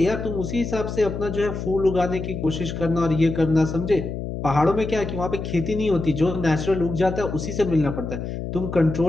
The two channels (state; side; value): noise; left; hum, 6 dB below the sound